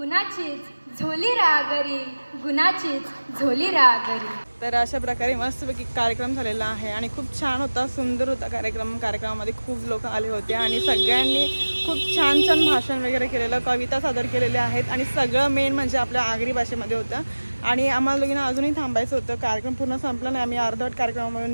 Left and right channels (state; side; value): inverted; both; correlation -1.00